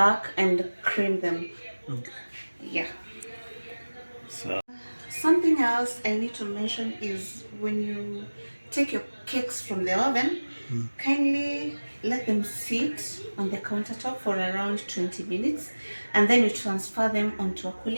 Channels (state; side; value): inverted; both; correlation -1.00